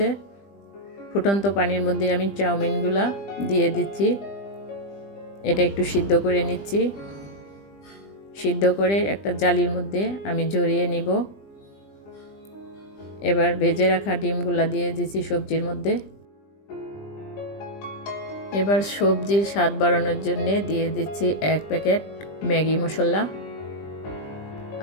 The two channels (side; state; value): right; late; 20 ms